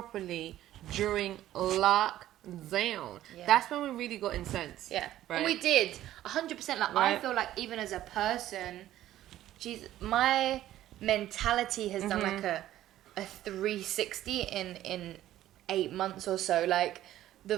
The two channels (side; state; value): left; quieter; 13.4 dB